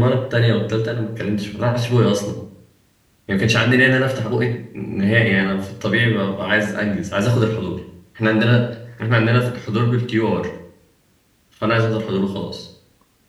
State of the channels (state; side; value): identical; both; correlation 1.00